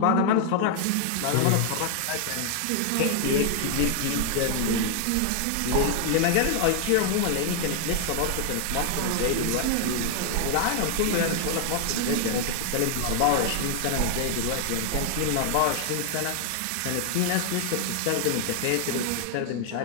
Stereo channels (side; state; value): both; different; correlation 0.00